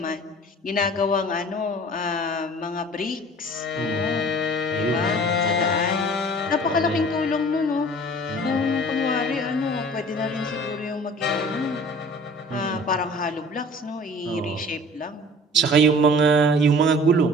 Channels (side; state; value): both; normal; correlation 0.46